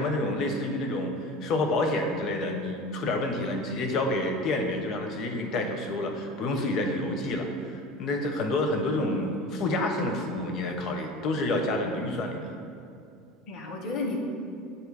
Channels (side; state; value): both; normal; correlation 0.35